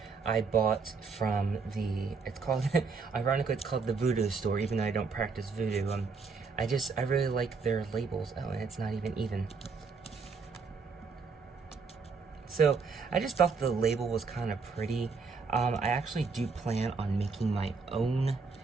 I bought from the, it's called, ironically it's called the Voodoo Store, even though I don't practice voodoo. I really like their labels. Oh, and it's not even. So, I just thought the label was kind of pretty. I actually do plan on making my own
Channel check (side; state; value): left; quieter; 4.8 dB